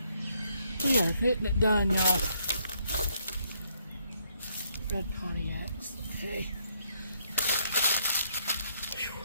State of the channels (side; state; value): both; inverted; correlation -0.71